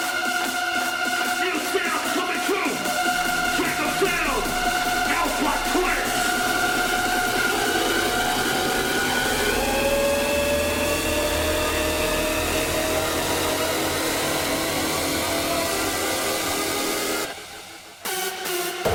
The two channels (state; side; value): identical; both; correlation 1.00